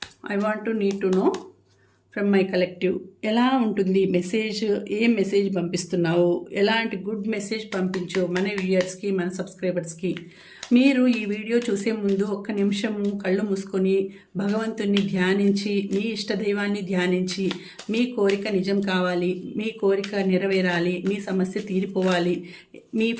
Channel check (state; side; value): identical; both; correlation 1.00